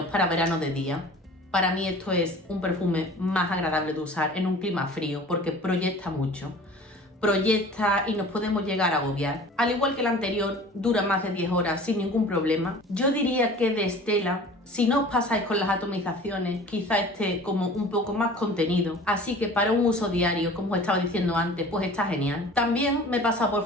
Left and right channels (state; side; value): normal; both; correlation 0.43